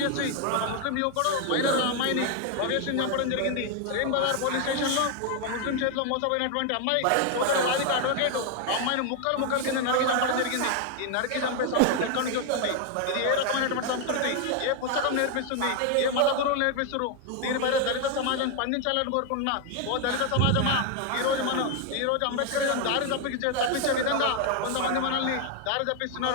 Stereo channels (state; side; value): different; both; correlation 0.01